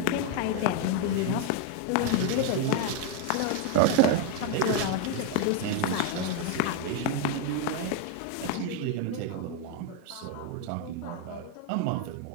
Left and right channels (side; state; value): both; different; correlation 0.01